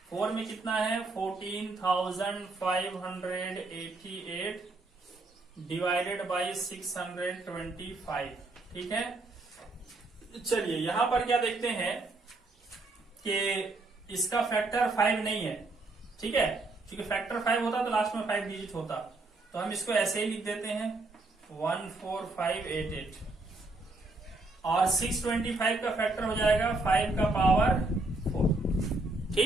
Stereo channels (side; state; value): left; quieter; 3.1 dB